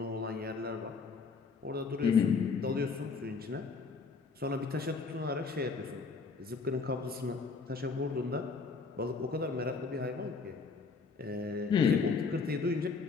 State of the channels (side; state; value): right; quieter; 4.7 dB